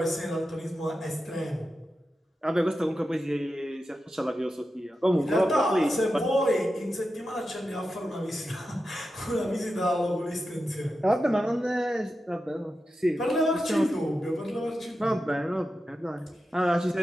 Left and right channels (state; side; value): normal; both; correlation 0.90